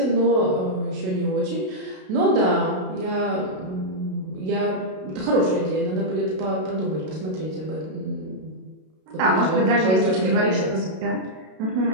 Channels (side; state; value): left; late; 32 ms